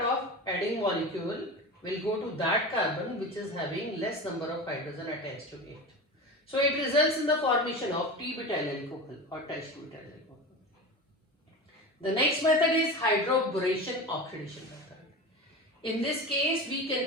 adding molecule will go to that carbon which is having less number of hydrogen attached to it. So it results in the formation of T-butyl alcohol or tributyl alcohol. The next method is hydroboration oxidation method. In this case, we can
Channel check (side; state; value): both; normal; correlation 0.28